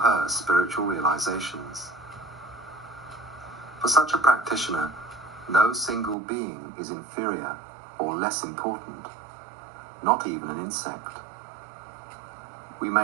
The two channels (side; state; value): left; drops out; at 6.2 s